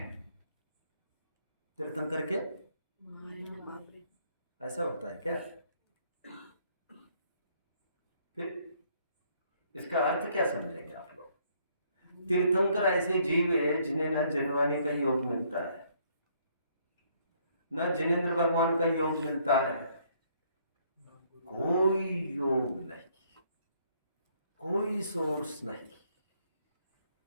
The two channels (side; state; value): both; inverted; correlation -0.67